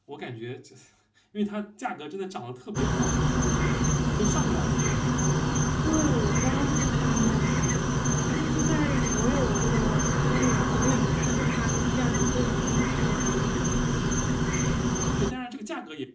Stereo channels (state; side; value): identical; both; correlation 1.00